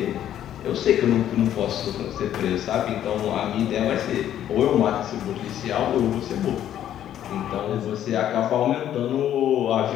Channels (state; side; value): quieter; right; 11.0 dB